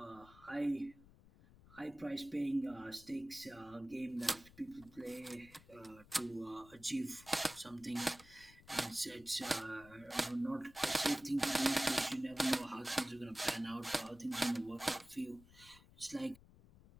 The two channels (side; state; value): left; noise; rumble, 22 dB below the sound